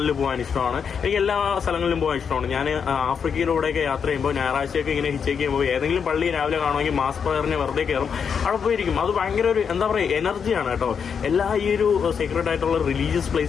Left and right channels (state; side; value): quieter; right; 6.7 dB